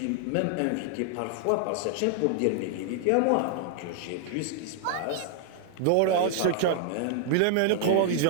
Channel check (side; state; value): both; different; correlation -0.01